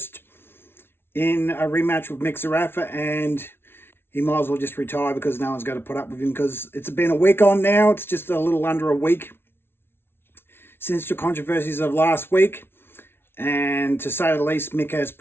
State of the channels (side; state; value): right; late; 0.11 ms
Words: in a rematch with Zerafa, and he might as well just retire because no one's going to put up with him, because it's been a week on now. It's just a little under a week since the controversies of last week, and to say the least, Mick has